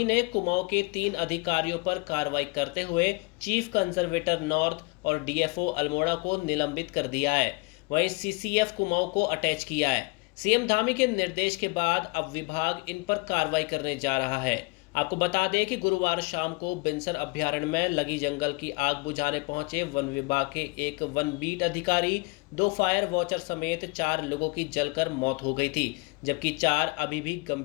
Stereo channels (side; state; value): right; quieter; 28.1 dB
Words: ने कुमाऊं के 3 अधिकारियों पर कार्रवाई करते हुए चीफ कंजर्वेटर नॉर्थ और डीएफओ अल्मोड़ा को निलंबित कर दिया है। वहीं सीसीएफ कुमाऊं को अटैच किया है। सीएम धामी के निर्देश के बाद अब विभाग इन पर कार्रवाई करने जा रहा है। आपको बता दें कि गुरुवार शाम को बिनसर अभ्यारण्य में लगी जंगल की आग बुझाने पहुंचे वन विभाग के एक वन बीट अधिकारी, 2 फायर वॉचर समेत 4 लोगों की जलकर मौत हो गई थी, जबकि 4 अभी भी